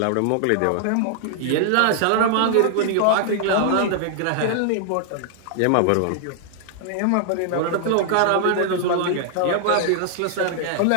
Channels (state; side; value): different; both; correlation -0.01